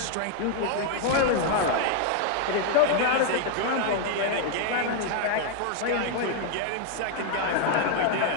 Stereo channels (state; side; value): different; both; correlation 0.00